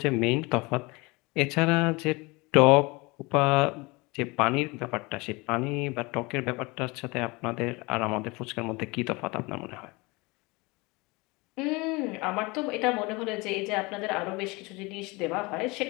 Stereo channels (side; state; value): right; quieter; 25.2 dB